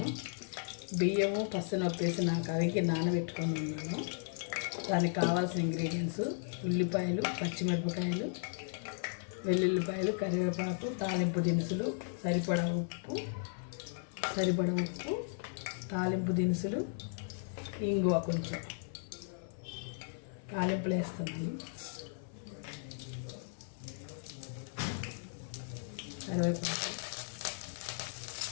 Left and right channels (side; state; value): right; silent; 54 dB below the other